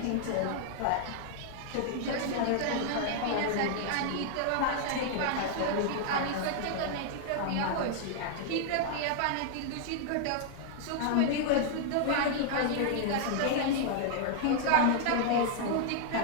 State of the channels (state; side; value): different; both; correlation -0.01